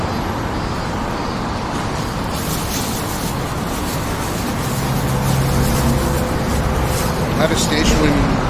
At a station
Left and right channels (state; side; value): identical; both; correlation 1.00